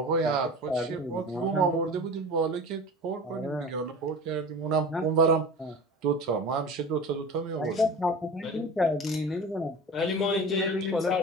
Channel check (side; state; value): both; normal; correlation 0.35